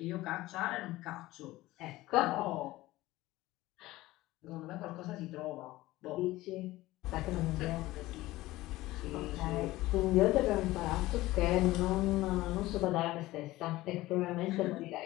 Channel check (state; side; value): quieter; right; 17.8 dB